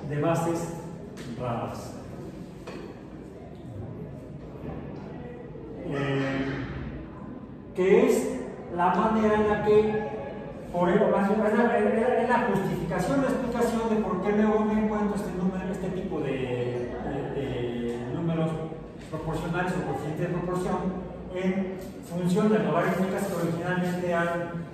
de bases raras. Que es la manera en la que, es la justificación, la explicación de por qué luego me encuentro este tipo de números proporcionales o coeficientes de proporción en funciones logarítmicas que originalmente eran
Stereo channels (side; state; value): both; identical; correlation 1.00